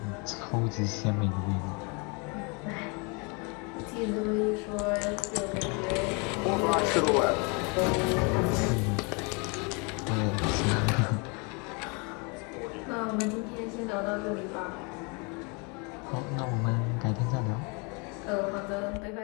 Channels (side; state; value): right; quieter; 31.9 dB